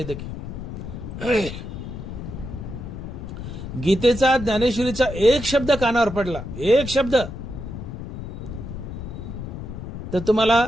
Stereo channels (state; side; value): noise; left; rumble, 8 dB below the sound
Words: की. गीतेचा, ज्ञानेश्वरीचा एक शब्द कानावर पडला, एक शब्द, तर तुम्हाला